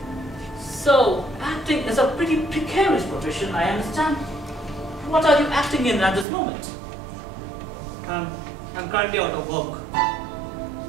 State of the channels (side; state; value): left; drops out; at 6.2 s